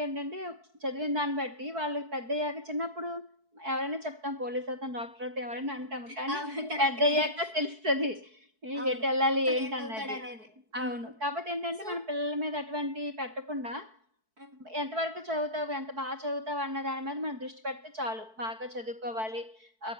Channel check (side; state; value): left; late; 4.6 ms